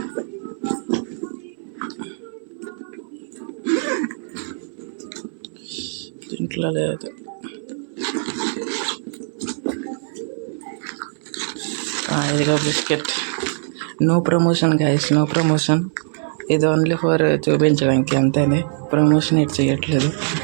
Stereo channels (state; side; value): silent; left; 64 dB below the other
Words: దీంట్లో లేదు. ఇదిగో biscuit. No promotion guys, no promotion. ఇది ఓన్లీ ఫర్ చూపించడానికి అంతేనే. ప్రమోషన్ ఎట్ చేయట్లేదు.